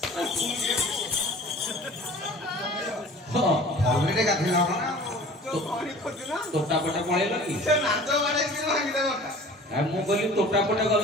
हां ऑलरेडी गाधे ना तो पानी खोज ना तोटा पटा पळेलो की से नाचो बाडे कि भांगी दे बटा आ मु कहली तोटा पटा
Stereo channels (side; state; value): both; normal; correlation 0.45